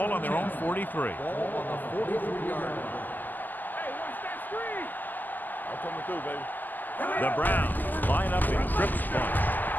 on their own 43. Ball on the 43-yard line. Hey, watch that screen. I'm coming through, baby. The Browns line up in trips bunch.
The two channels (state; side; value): late; right; 0.087 ms